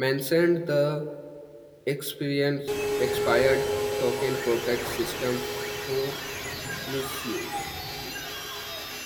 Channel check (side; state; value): both; identical; correlation 1.00